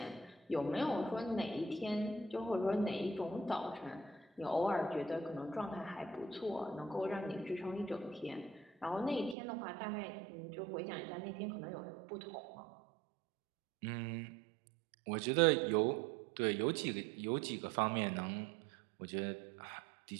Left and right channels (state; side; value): drops out; left; at 9.3 s